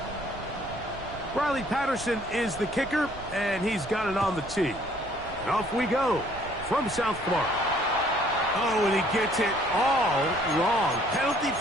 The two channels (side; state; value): right; noise; rumble, 15 dB below the sound